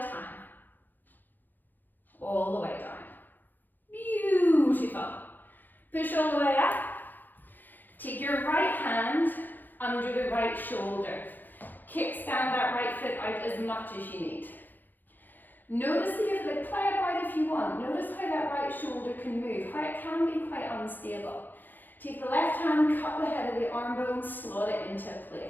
All the way down. Beautiful. Push all the way up. Take your right hand under the right shoulder. Kickstand that right foot out as much as you need. Notice the foot, play it right if you want. Notice how that right shoulder can move, how it can be quite unstable. Take the left hand, cup the head of the arm bone, slot it into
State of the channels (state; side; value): late; right; 0.088 ms